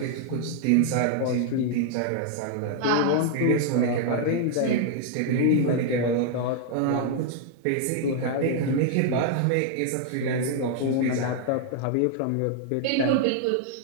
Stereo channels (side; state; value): both; different; correlation 0.00